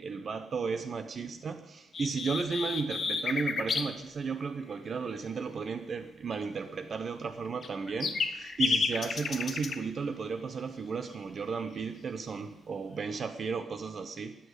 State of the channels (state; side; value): normal; both; correlation 0.80